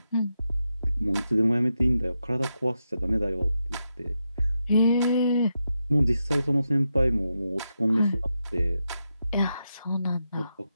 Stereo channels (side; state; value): both; inverted; correlation -0.86